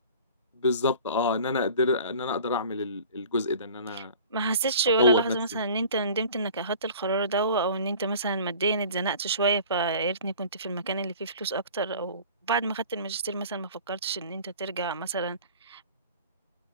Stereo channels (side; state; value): both; inverted; correlation -0.44